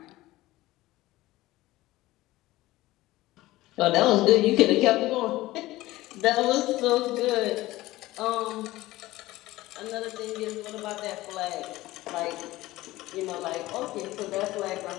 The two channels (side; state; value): right; quieter; 17.6 dB